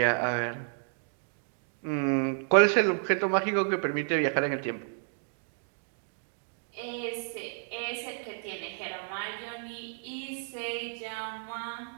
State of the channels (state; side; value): silent; left; 57 dB below the other